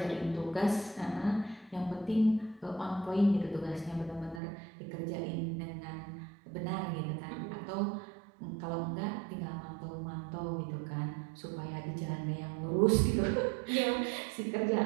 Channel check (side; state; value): left; drops out; at 4.4 s